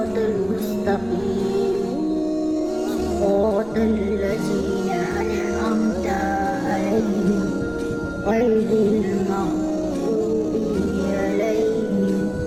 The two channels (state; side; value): noise; right; rumble, 19 dB below the sound